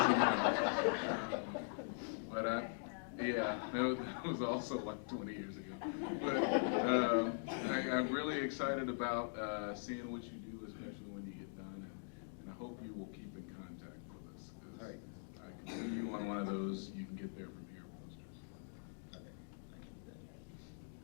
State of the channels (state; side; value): silent; right; digital silence